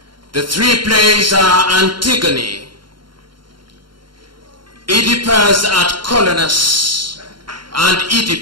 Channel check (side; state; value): left; late; 0.72 ms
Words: The 3 plays are Antigone, Oedipus at Colonus, and